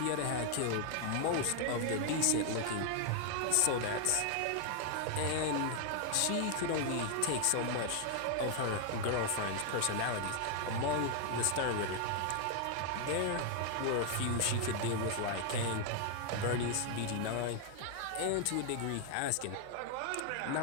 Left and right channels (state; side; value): different; both; correlation 0.00